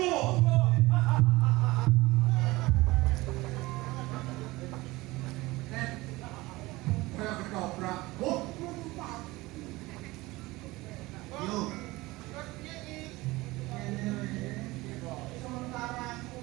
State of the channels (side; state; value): left; quieter; 20.6 dB